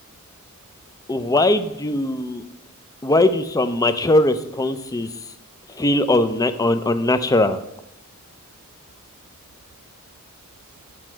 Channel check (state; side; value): normal; both; correlation 0.58